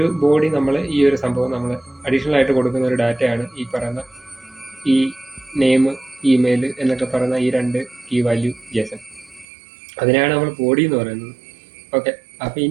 ബോഡി നമ്മൾ ഈ ഒരു സംഭവം നമ്മൾ അഡീഷണൽ ആയിട്ട് കൊടുക്കുന്ന ഒരു ഡാറ്റയാണ് ഈ പറയുന്ന ഈ നെയിം, ഇമെയിൽ എന്നൊക്കെ പറയുന്ന ഈ 2 കീ വാല്യൂ JSON. അതിനാണ് നമ്മൾ ബോഡി എന്ന് പറയുന്നത്. ഓക്കെ, അപ്പോൾ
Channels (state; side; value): drops out; left; at 9.5 s